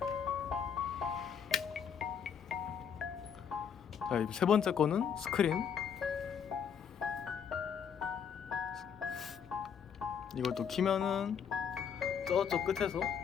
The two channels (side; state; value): right; quieter; 7.5 dB